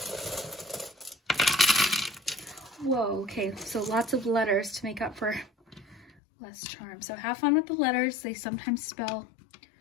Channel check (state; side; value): drops out; right; at 6.1 s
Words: Whoa, okay, so lots of letters to make up for less charm. So have fun with the letters. They sometimes spell